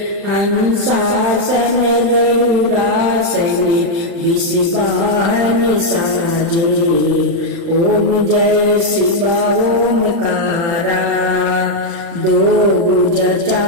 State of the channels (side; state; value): left; late; 35 ms